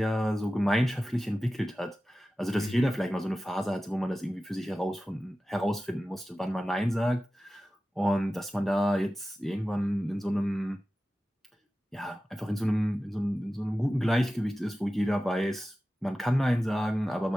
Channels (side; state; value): both; normal; correlation 0.95